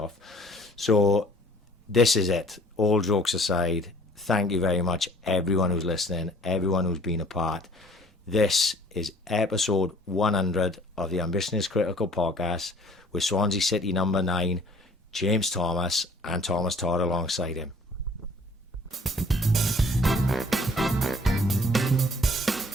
So this is it. All jokes aside, thank you very much, everyone who's listening, everyone who's been a part. This is episode 100 of the Ambition is Critical podcast with Swansea City number 9, James Thomas, and Thomas Todd alongside him.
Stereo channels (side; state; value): both; normal; correlation 0.55